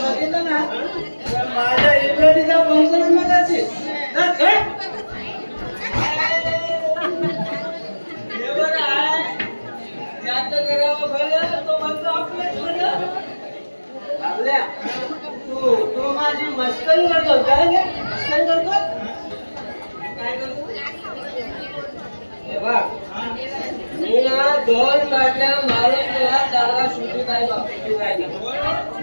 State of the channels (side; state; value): both; inverted; correlation -1.00